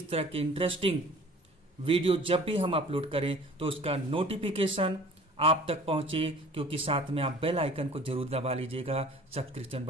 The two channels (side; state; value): both; normal; correlation 0.47